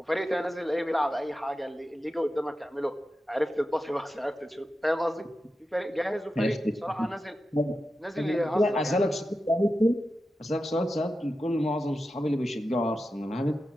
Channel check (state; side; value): normal; both; correlation 0.91